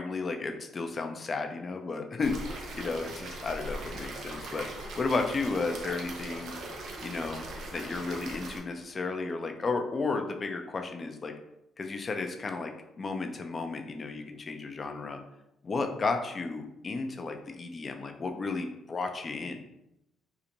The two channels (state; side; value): quieter; right; 3.1 dB